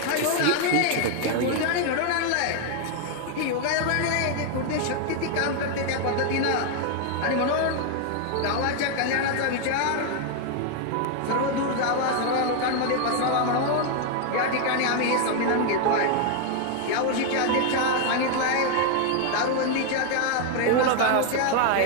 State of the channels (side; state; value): both; different; correlation 0.00